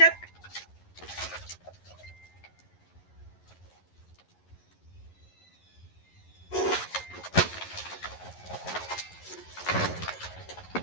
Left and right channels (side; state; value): right; late; 11 ms